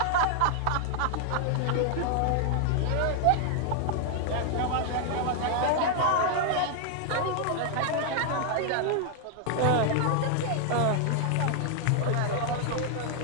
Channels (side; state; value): both; different; correlation 0.00